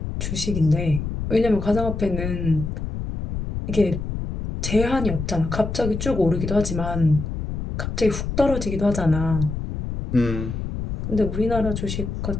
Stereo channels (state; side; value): noise; left; rumble, 5 dB below the sound